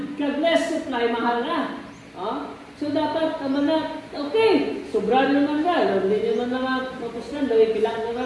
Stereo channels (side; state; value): both; identical; correlation 1.00